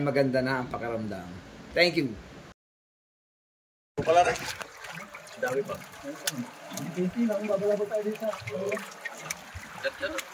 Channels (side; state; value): both; identical; correlation 1.00